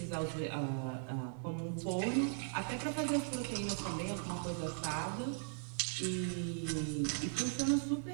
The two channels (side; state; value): left; silent; 52 dB below the other